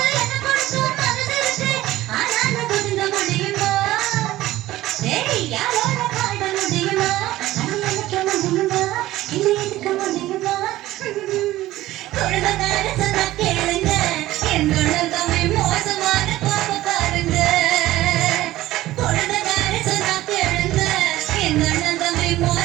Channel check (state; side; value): quieter; left; 15.9 dB